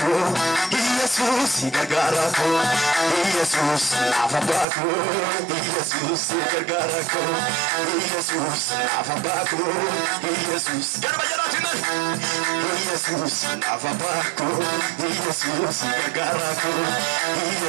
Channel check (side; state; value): left; drops out; at 4.7 s